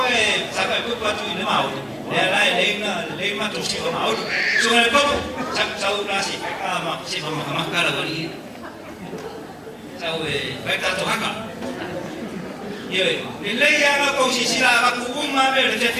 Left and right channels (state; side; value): identical; both; correlation 1.00